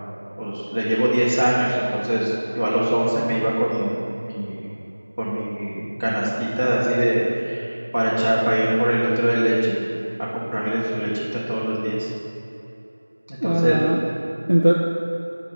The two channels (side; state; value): both; inverted; correlation -1.00